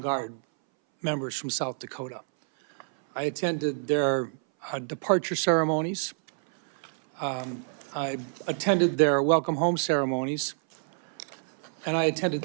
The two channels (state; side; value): silent; left; 60 dB below the other